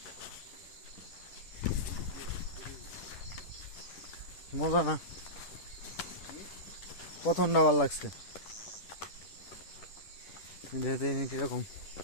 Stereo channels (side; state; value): right; late; 10 ms